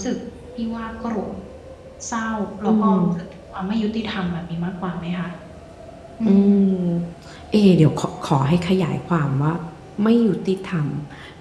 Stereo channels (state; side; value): identical; both; correlation 1.00